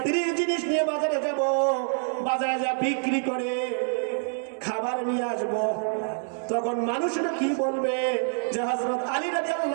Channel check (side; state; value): left; silent; 60 dB below the other